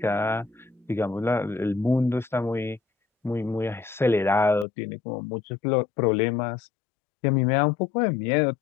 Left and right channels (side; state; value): right; drops out; at 4.7 s